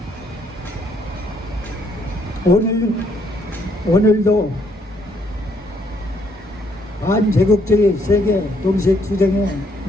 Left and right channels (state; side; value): normal; both; correlation 0.70